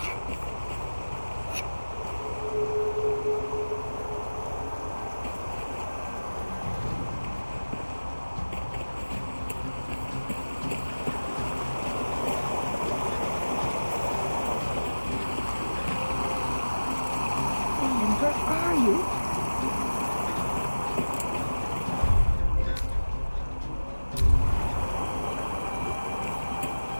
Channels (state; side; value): inverted; both; correlation -1.00